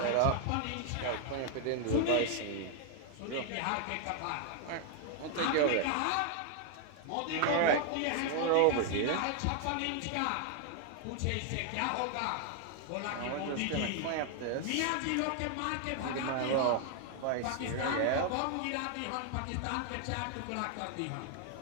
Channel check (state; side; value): different; both; correlation 0.00